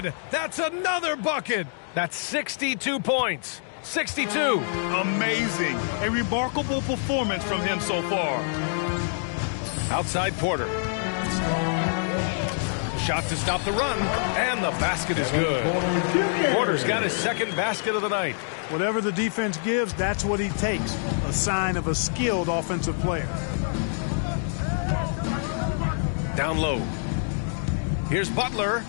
That's another bucket. That's 62 points. 62. Amazing. A remarkable performance from him so far. Outside Porter. Shot to stop the run, and the basket is good. Porter's got his 2nd basket of the night. Whatever the defense gives, that's what he takes. A sign of a skilled offensive player. Down low. Here's Butler.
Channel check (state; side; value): silent; right; digital silence